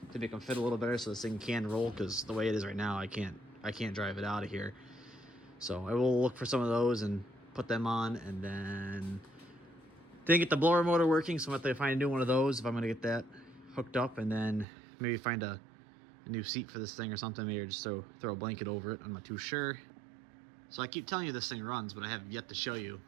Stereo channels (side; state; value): left; drops out; at 14.7 s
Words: to make them fit a little better so this thing can roll, because the way it is right now, I can't drive it out of here. So I will look for some of those and put them on, and then didn't get the blower motor working, so I'm gonna have to find a new one of those if I'm gonna get that hooked up, and then maybe find a new seat for this thing or something, maybe just throw a blanket over it. I'm not too sure. So I keep telling you this thing runs, but I have yet to show you